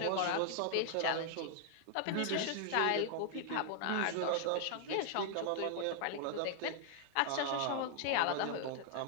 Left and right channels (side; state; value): both; different; correlation 0.00